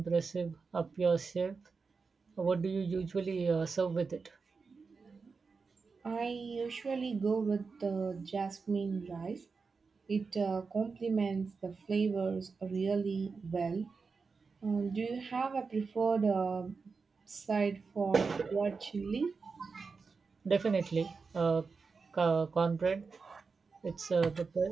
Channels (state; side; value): quieter; left; 4.8 dB